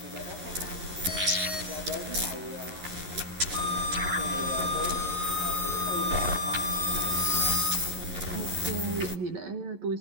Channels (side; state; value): left; late; 11 ms